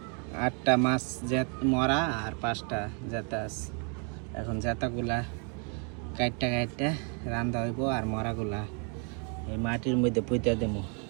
8টা মাছ মরা আর 5টা জেতা আছে। এখন জেতাগুলা কাটটা রান্ধা হইব আর মরাগুলা এই মাটির মধ্যে পুঁতে দেবো।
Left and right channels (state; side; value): quieter; left; 38.4 dB